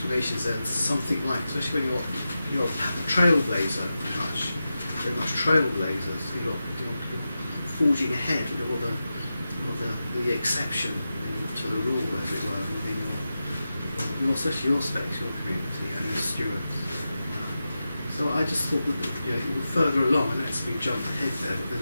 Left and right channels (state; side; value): inverted; both; correlation -0.92